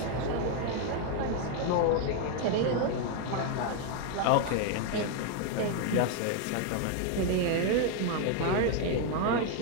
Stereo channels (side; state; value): both; different; correlation 0.01